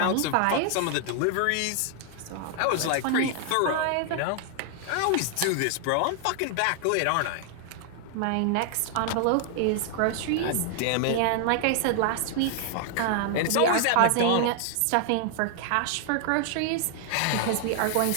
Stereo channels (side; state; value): both; different; correlation 0.00